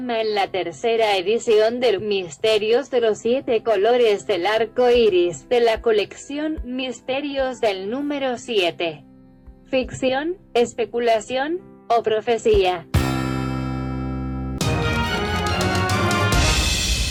en la tercera edición del Misterios de los 7 colores del arco iris, de la colección Misterios del número 7. Ficción, especulación o profecía.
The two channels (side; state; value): both; identical; correlation 1.00